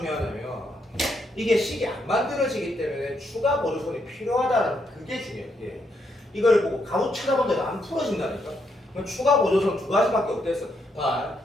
이게 식이 안 만들어지기 때문에 추가 보조선이 필요하다는 그게 중요해. 예. 이걸 보고 가로 쳐다본다고 안 풀어진다니까. 그럼 추가 보조선 두 가지밖에 없댔어. 봐.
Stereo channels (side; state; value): both; normal; correlation 0.77